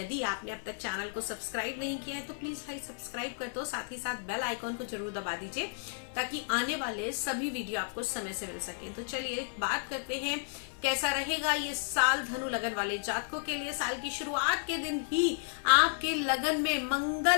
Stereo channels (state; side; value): silent; right; 56 dB below the other